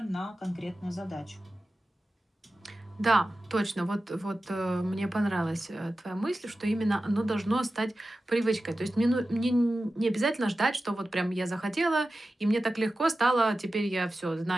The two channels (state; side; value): normal; both; correlation 0.94